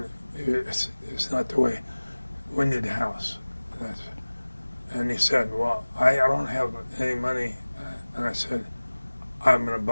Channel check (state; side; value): inverted; both; correlation -1.00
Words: not the way. We need a house." And he said, "Well, I don't have any money." And I said, I'm going to